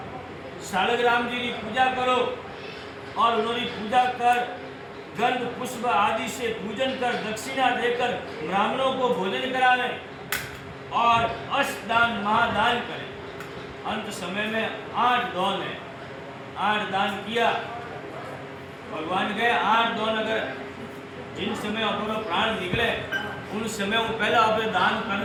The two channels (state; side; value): identical; both; correlation 1.00